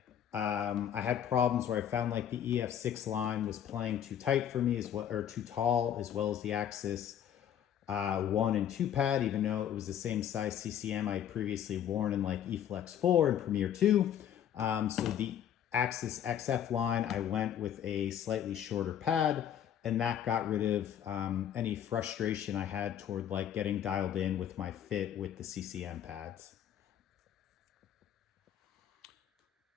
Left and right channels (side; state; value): right; quieter; 9.8 dB